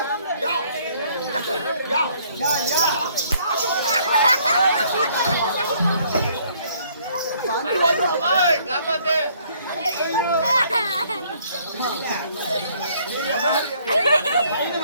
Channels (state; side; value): inverted; both; correlation -0.63